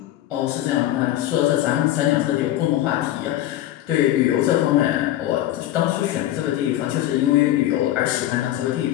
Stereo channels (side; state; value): right; quieter; 13.7 dB